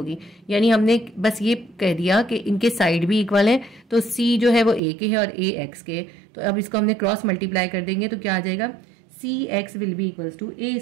यानी हमने बस ये कह दिया कि इनके साइड भी इक्वल है, तो सी जो है वो ए के है और ए एक्स के। तो अब इसको हमने क्रॉस मल्टीप्लाई कर देंगे तो क्या आ जाएगा? C X will be equals to A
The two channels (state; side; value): drops out; left; at 4.8 s